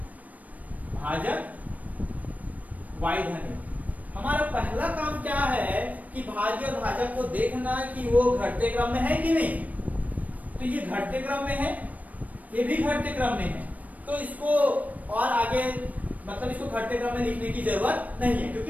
भाजक y धन 1। हमारा पहला काम क्या है कि भाज्य और भाजक को देखना कि वो घटते क्रम में है कि नहीं। तो ये घटते क्रम में है, ये भी घटते क्रम में है, तो इसको और आगे मतलब इसको घटते क्रम में लिखने की जरूरत नहीं है, क्योंकि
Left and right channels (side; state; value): left; late; 0.073 ms